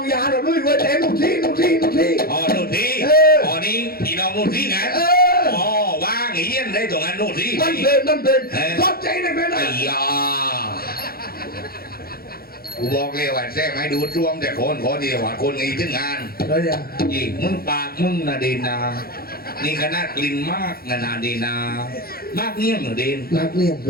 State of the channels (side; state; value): right; late; 0.44 ms